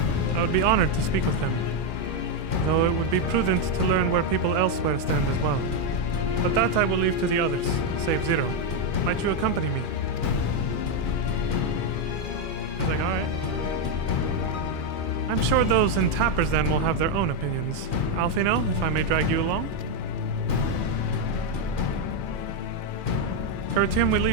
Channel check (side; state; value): right; late; 2.4 ms